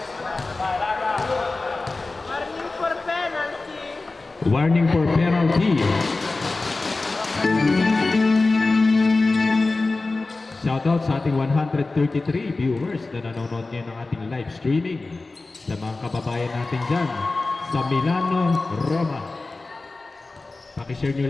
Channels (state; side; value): quieter; right; 3.4 dB